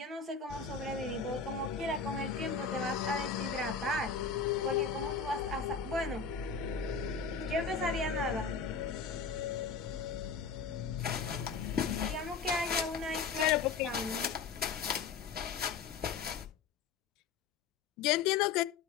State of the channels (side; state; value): right; quieter; 5.4 dB